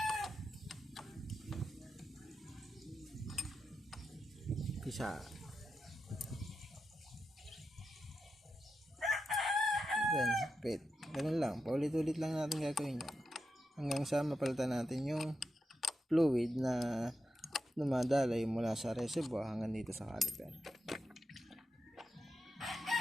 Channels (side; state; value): both; normal; correlation 0.87